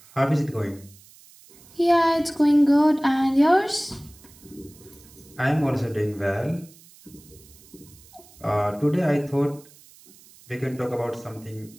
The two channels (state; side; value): noise; right; hiss, 24 dB below the sound